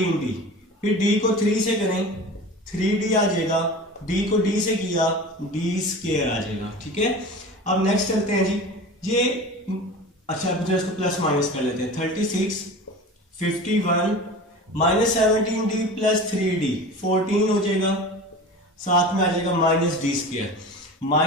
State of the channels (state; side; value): normal; both; correlation 0.35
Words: फिर d को 3 से करें 3d आ जाएगा, d को d से किया d स्क्वायर आ जाएगा, ठीक है। अब नेक्स्ट चलते हैं जी, ये अच्छा इसको प्लस माइनस कर लेते हैं। 36 51 माइनस 17d प्लस 3d 14 हो जाएगा, साथ में आ जाएगा minus D square.